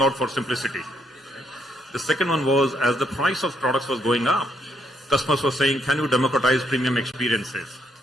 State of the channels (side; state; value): both; normal; correlation 0.74